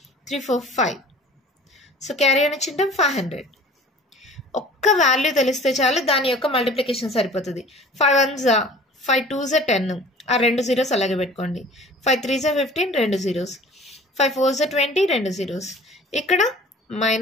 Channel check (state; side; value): normal; both; correlation 0.46